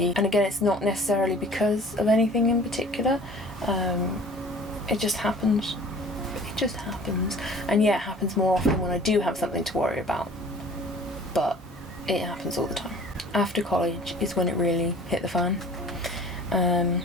and again, it's not necessarily because of anything in particular. It just happens. And yeah, it happens more often when I do have something to worry about, but it happens all the time. After college is when it really hit the fan.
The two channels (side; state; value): both; normal; correlation 0.47